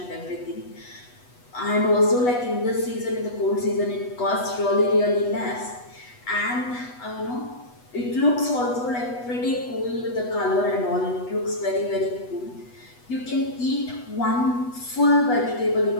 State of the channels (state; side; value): late; right; 8.2 ms